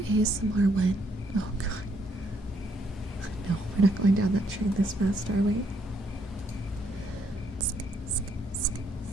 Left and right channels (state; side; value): normal; both; correlation 0.72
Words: ASMR when? Oh god. No, we're not going down that train this fast, are we?